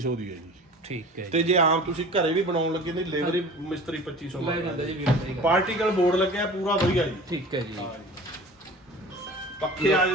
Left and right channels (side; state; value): both; normal; correlation 0.41